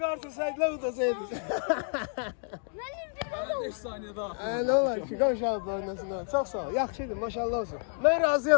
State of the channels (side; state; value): right; silent; 58 dB below the other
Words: artırsaydılar udasaydı. 5 saniye daha. Ne olar ki, qonşalıb oynasınlar. Çox sağ ol. Yaxşıdır, maşallah olsun. Mən